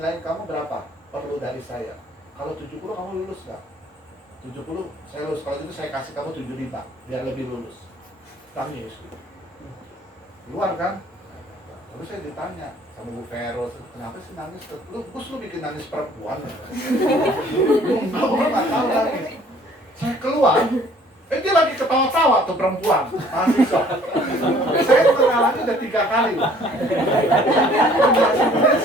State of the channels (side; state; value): both; normal; correlation 0.56